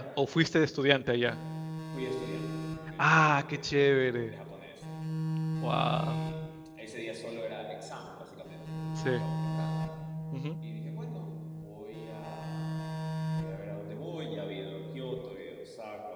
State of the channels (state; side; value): identical; both; correlation 1.00